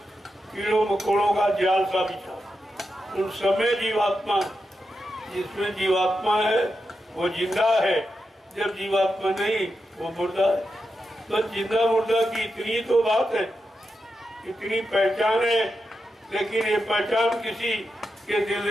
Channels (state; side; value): normal; both; correlation 0.87